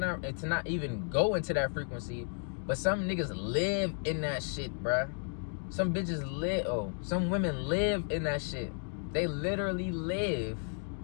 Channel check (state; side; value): silent; right; 56 dB below the other